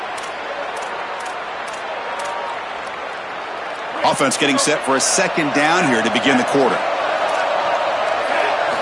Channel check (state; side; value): identical; both; correlation 1.00